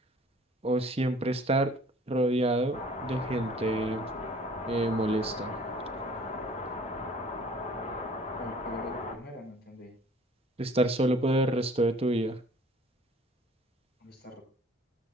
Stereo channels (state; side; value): normal; both; correlation 0.52